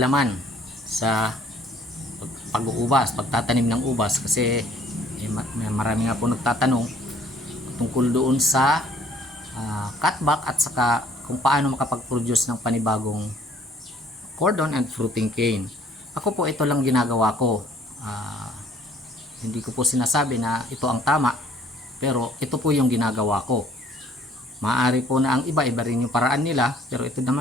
sa pag-uubas, pagtatanim ng ubas kasi marami nga po nagtatanong tungkol doon sa cutback at saka kung paano makapag-produce ng panibagong cordon and fruiting cane. Ako po ito lang ginagawa ko. Hindi ko po sinasabi na ito ang tama, pero ito po yung ginagawa ko. Maaari po na ang iba rin yung paraan nila, pero ito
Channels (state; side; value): normal; both; correlation 0.58